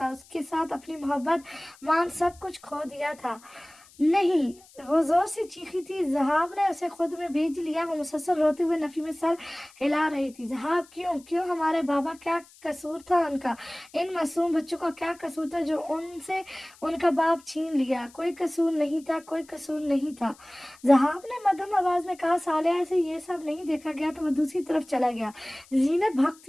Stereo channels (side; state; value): left; noise; hiss, 25 dB below the sound